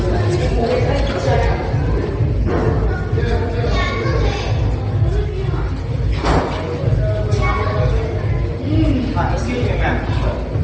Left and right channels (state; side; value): identical; both; correlation 1.00